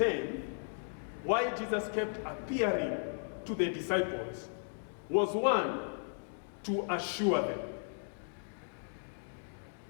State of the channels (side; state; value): right; silent; digital silence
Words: why Jesus kept appearing to the disciples was, one, to assure them.